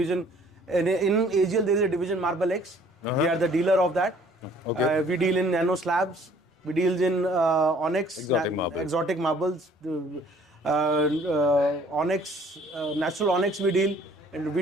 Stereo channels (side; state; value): both; normal; correlation 0.57